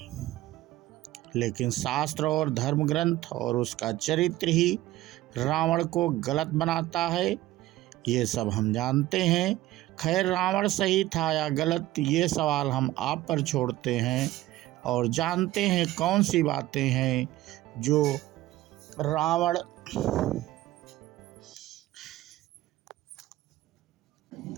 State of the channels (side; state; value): left; quieter; 16.0 dB